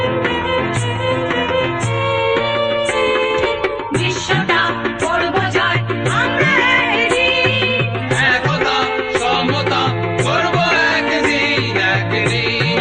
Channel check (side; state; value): both; identical; correlation 1.00